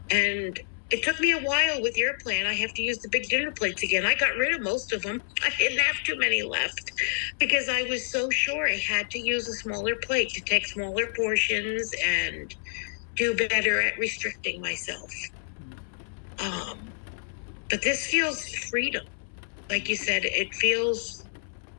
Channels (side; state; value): right; silent; 59 dB below the other